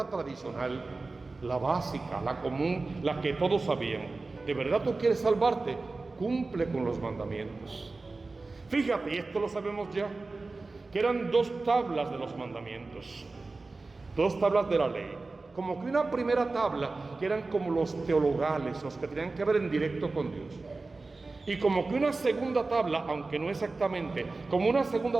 tradicional, la básica, la común, la que todos sabían. ¿De verdad tú quieres salvarte? Cumple con los mandamientos. Fíjate, y esto lo sabemos ya, que eran 2 tablas de los mandamientos, 2 tablas de la ley. Como que una primera tabla, que eran como los teologales, los que tenían que ver en directo con Dios. Y como que una segunda tabla, aunque no exactamente, como una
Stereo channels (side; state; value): left; quieter; 3.6 dB